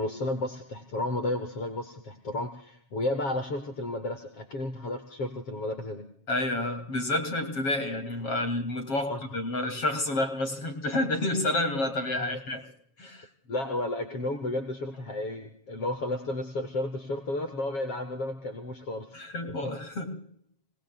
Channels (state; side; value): late; right; 7.4 ms